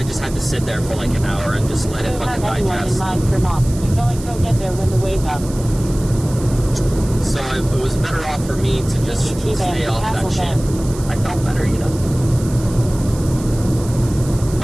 just had to sit there for, like, an hour and just let it You fucking have anyone in digest. mind for mom. You're going to go get there when the wake up. So it was better off for me to just GT stay Band, off that Castle shit. Band. I felt better, you know.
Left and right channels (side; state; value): right; noise; hiss, 16 dB below the sound